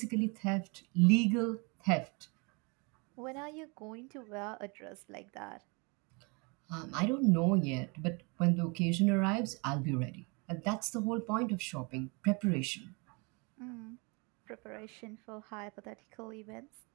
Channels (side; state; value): left; quieter; 31.0 dB